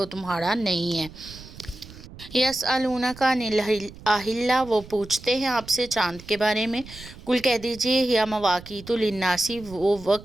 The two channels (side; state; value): right; noise; rumble, 17 dB below the sound